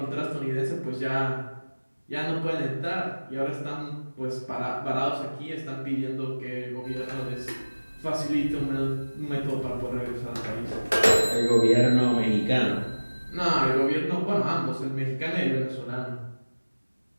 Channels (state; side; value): inverted; both; correlation -1.00